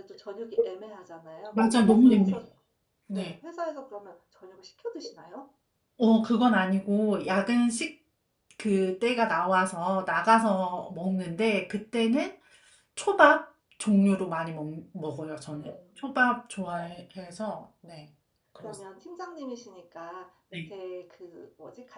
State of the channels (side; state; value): both; identical; correlation 1.00